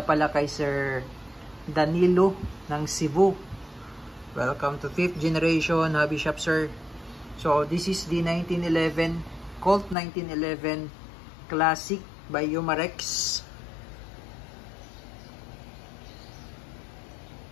kay Sir Danilo ng Cebu. Welcome to 5th generation hobby shop, sir. So this is the 1911 Colt 1911 classic by Umarex.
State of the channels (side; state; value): right; drops out; at 10.0 s